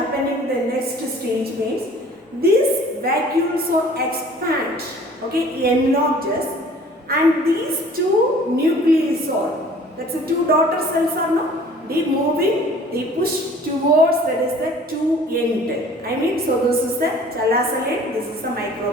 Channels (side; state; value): both; normal; correlation 0.50